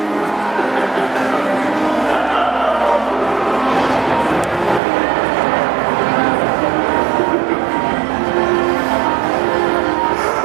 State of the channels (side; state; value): left; drops out; at 4.8 s